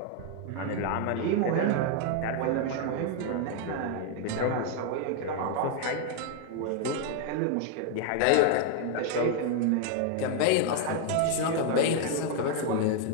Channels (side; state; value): both; different; correlation 0.00